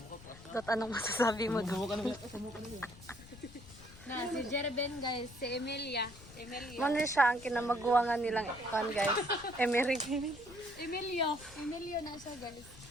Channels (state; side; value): noise; left; rumble, 18 dB below the sound